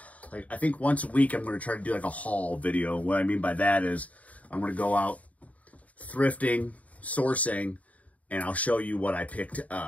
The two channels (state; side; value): late; right; 0.069 ms